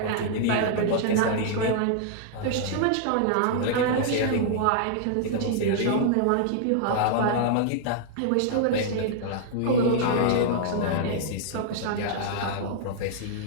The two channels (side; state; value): both; different; correlation -0.01